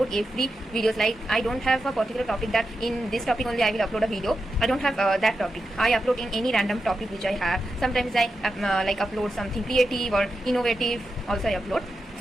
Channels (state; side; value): normal; both; correlation 0.89